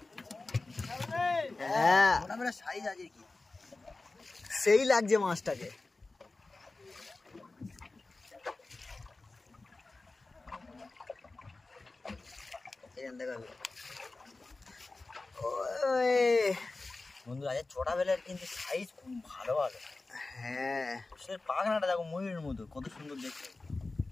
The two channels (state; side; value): quieter; right; 3.4 dB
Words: হ্যাঁ ছোটবেলা সাইজ আছে কি, সেই লাগছে মাছটাকে। বন্ধুরা আজ ছোটবেলার কিন্তু সাইজ খুব ভালো ভালো। হ্যাঁ সে পাখনাটা দেখো ময়ূরের মতো, কত সুন্দর দেখতে।